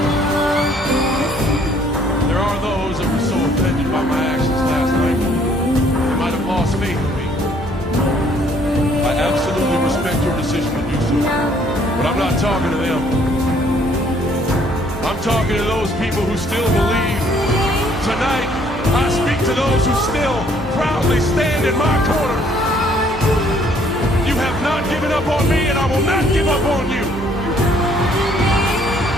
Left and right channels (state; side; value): normal; both; correlation 0.63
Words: There are those that were so offended by my actions last night, they might have lost faith in me. I absolutely respect your decision to do so, but I'm not talking to them. I'm talking to those people who still believe. Tonight, I speak to those who still proudly stand in my corner. You have not given up on me, and I will not give up on you.